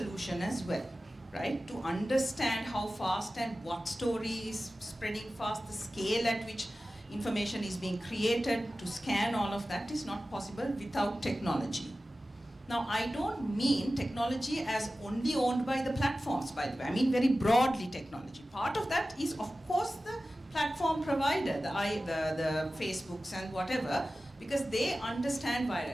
as well, right? To understand how fast and what story is spreading fast, the scale at which information is being created, to scan all of that is not possible without technology. Now, I don't mean technology as only owned by the platforms, by the way. I mean very broadly technology. Part of that is, of course, the platform provider, the Facebooks and whatever, because they understand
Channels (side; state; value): both; normal; correlation 0.95